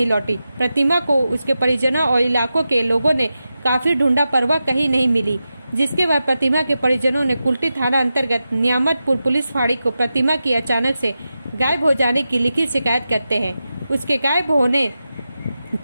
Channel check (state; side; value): inverted; both; correlation -0.91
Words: लौटी। प्रतिमा को उसके परिजनों और इलाकों के लोगों ने काफी ढूंढा पर वह कहीं नहीं मिली, जिसके बाद प्रतिमा के परिजनों ने कुल्टी थाना अंतर्गत नियामतपुर पुलिस फाड़ी को प्रतिमा की अचानक से गायब हो जाने की लिखित शिकायत करते हैं। उसके गायब होने